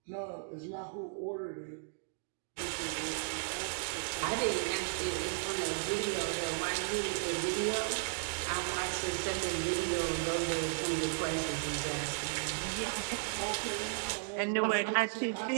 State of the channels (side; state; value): left; silent; digital silence